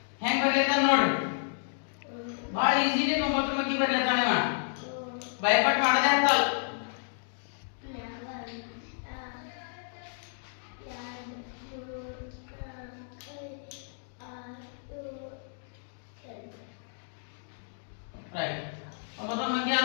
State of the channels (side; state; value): right; silent; digital silence